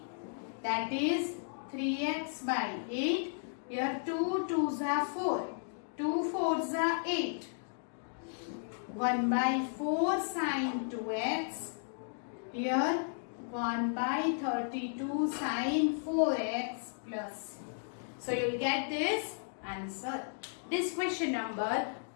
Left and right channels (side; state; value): right; silent; digital silence